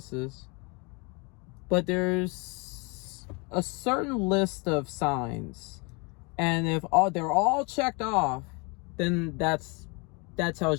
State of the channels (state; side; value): quieter; right; 30.4 dB